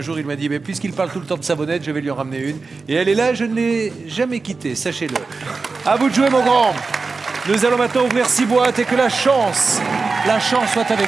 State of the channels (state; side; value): quieter; left; 4.2 dB